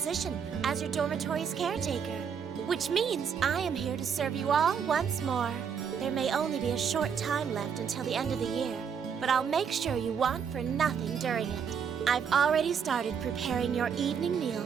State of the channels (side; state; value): left; quieter; 7.1 dB